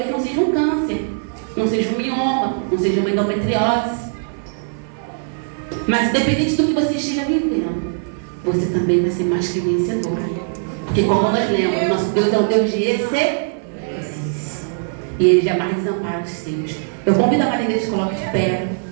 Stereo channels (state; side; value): silent; left; 60 dB below the other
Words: não seja um câncer, não seja um mioma, não seja uma endometriose. Mas independente do que você esteja vivendo, você também vai ser mais que vencedor. Porque como nós lemos, nosso Deus é um Deus de excelência. E Ele jamais desampara os seus. Eu convido a Maria que se coloque de pé.